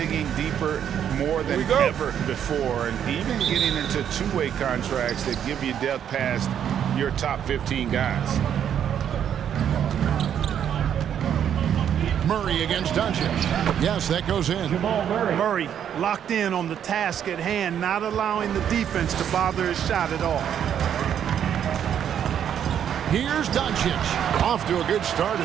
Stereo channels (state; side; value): quieter; left; 9.2 dB